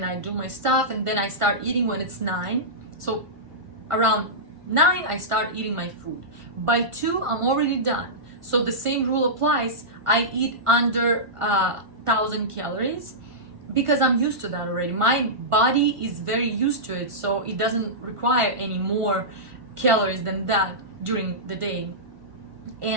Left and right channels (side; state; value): left; late; 1.5 ms